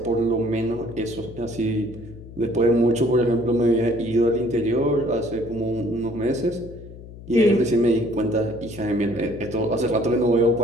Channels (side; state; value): left; noise; hum, 16 dB below the sound